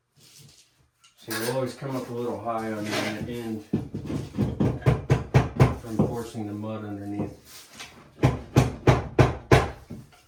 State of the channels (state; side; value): identical; both; correlation 1.00